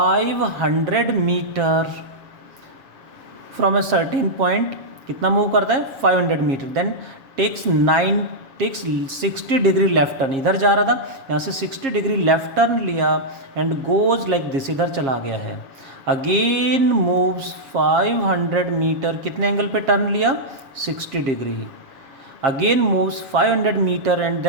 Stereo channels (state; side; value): late; left; 7.1 ms